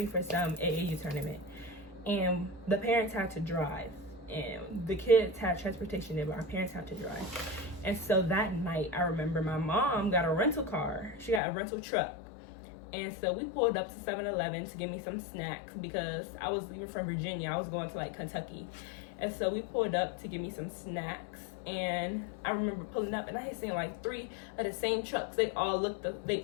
for some AAU tournament. And the parents had to drive, and the kids had transportation there, but our parents had to drive. And so that night, I remember my mom got a rental car. She got a rental truck. And so we pulled up to 7-Eleven to give me some snacks because I was leaving from Virginia. I was going to like Kentucky. And so we pulled up to give me some snacks. And I remember pulling up and I had seen like 3 of the same trucks. They all looked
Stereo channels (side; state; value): right; drops out; at 11.4 s